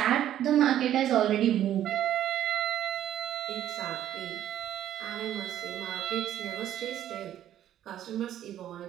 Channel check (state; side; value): quieter; left; 11.6 dB